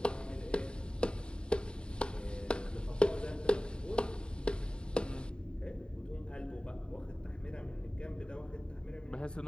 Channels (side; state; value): right; late; 0.050 ms